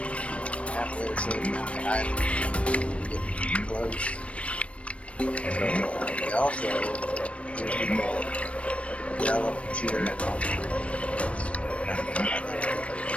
halfway or so down the island, get close. So we also hear people yell and cheer and all the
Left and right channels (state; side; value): late; right; 0.062 ms